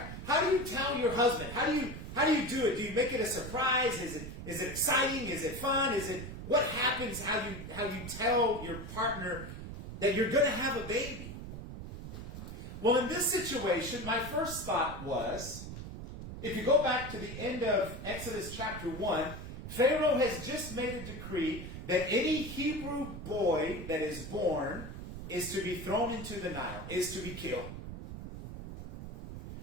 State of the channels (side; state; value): right; noise; rumble, 9 dB below the sound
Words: how do you tell your husband? How do you do it? Do you make it a surprise? Is it exciting? Is it fun? What happens? How you tell your partner that you're going to have a baby? Well, in this situation, my first thought was, if you go back to the end of Exodus chapter 1, Pharaoh has just made a decree that any Hebrew boy that is born is to be thrown into the Nile, is to be killed.